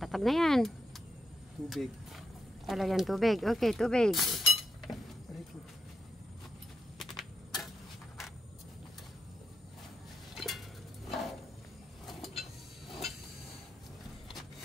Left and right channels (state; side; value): normal; both; correlation 0.84